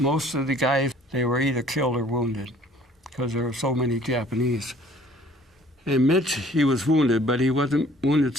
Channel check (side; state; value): both; normal; correlation 0.55